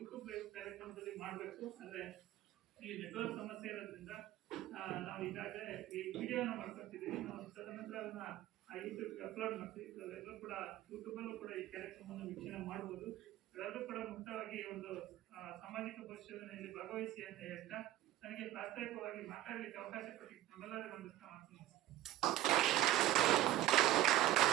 ಲೈವ್ ಕಾರ್ಯಕ್ರಮದಲ್ಲಿ ಮಾಡಬೇಕು. ಅಂದ್ರೆ ಈ ನೆಟ್ವರ್ಕ್ ಸಮಸ್ಯೆ ಇರೋದ್ರಿಂದ ನಾವು ಈಗಾಗಲೇ ಈ ವಿಡಿಯೋನ ಮಾಡ್ಕೊತಿದ್ದೀವಿ. ನಾವು ತದನಂತರ ಅದನ್ನ ಯೂಟ್ಯೂಬ್ಗೆ ಅಪ್ಲೋಡ್ ಮಾಡ್ತೀವಿ. ಎಲ್ಲರೂ ಕೂಡ ಯೂಟ್ಯೂಬಲ್ಲೂ ಕೂಡ ಈ ಕಾರ್ಯಕ್ರಮವನ್ನು ವೀಕ್ಷಣೆ ಮಾಡ್ಬೋದು. ಎಲ್ಲರೂ ಕೂಡ ಮುಕ್ತವಾಗಿ ಒಂದು ಸಾಮಾಜಿಕ ಪರಿಶೋಧನೆಯಲ್ಲಿ ಭಾಗವಹಿಸಿ ಅಂತ ಹೇಳ್ತಾ ನನಗೆ ಪ್ರಾಸ್ತಾವಿಕವಾಗಿ ಮಾತಾಡಲಿಕ್ಕೆ ಅವಕಾಶ ಕೊಟ್ಟಿದ್ದು ನಮ್ಮೆಲ್ಲರಿಗೂ ಒಂದು ಮಾಡ್ತೀನಿ.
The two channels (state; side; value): quieter; left; 14.4 dB